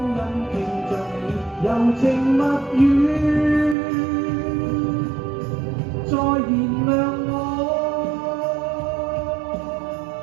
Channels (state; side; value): drops out; left; at 3.8 s